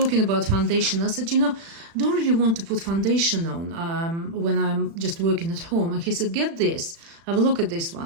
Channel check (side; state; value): left; late; 36 ms